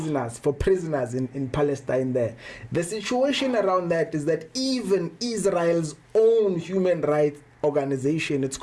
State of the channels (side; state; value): both; identical; correlation 1.00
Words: in Palestine, the situation around that is that even Israel's own human rights organization, it's